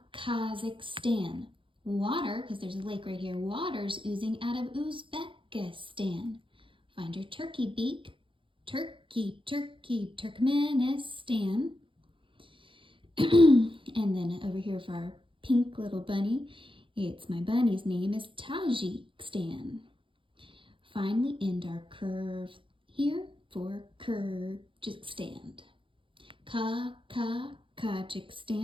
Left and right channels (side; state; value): left; late; 0.25 ms